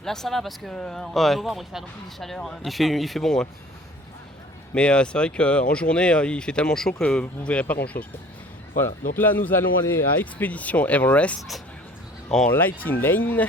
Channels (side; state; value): both; normal; correlation 0.50